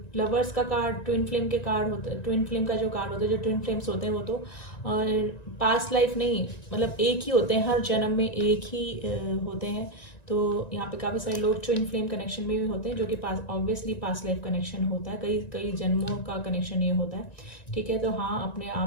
लवर्स का कार्ड ट्विन फ्लेम के कार्ड होता है, ट्विन फ्लेम का जो कार्ड होता है, जो ट्विन फ्लेम्स होते हैं वो तो पास्ट लाइफ नहीं, मतलब एक ही होते हैं, हर जन्म में एक ही होते हैं। तो यहाँ पे काफ़ी सारे लोग ट्विन फ्लेम कनेक्शन में भी होते हैं, जो कि ऑब्वियसली पास्ट लाइफ कनेक्शन होता है, कई जन्मों का कनेक्शन ये होता है, ठीक है। तो हाँ,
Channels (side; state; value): right; late; 1.9 ms